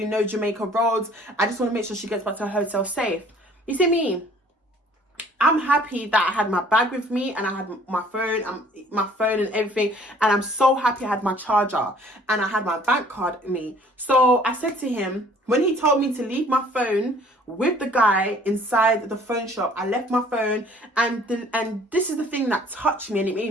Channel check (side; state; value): both; normal; correlation 0.55